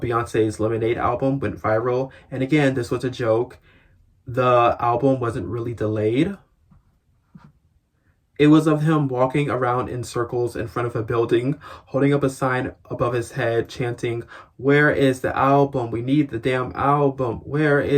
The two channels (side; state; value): both; identical; correlation 1.00